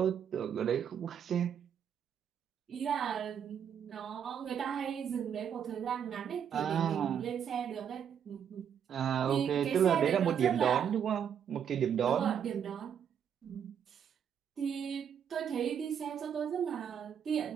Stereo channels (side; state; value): left; quieter; 8.3 dB